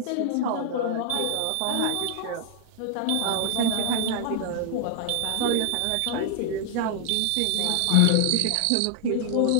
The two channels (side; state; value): both; different; correlation 0.00